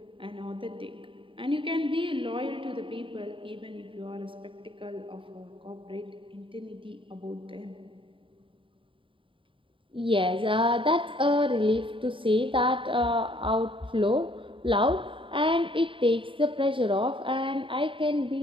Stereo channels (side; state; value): left; late; 0.25 ms